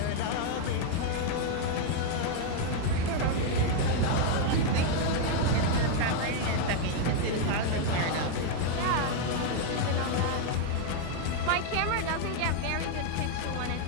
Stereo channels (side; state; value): both; different; correlation 0.00